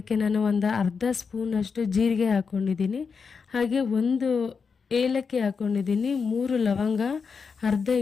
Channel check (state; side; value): quieter; right; 5.5 dB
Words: ನಾನು ಒಂದು ಅರ್ಧ ಸ್ಪೂನಷ್ಟು ಜೀರಿಗೆ ಹಾಕ್ಕೊಂಡಿದ್ದೀನಿ. ಹಾಗೆ 1 ಏಲಕ್ಕಿ ಹಾಕ್ಕೊಂಡಿದ್ದೀನಿ, 3 ಲವಂಗ, ಅರ್ಧ